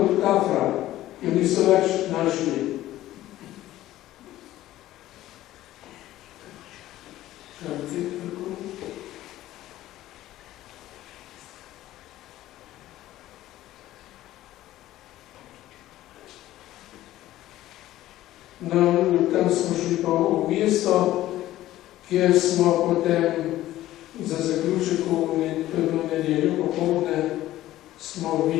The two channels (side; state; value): right; quieter; 14.7 dB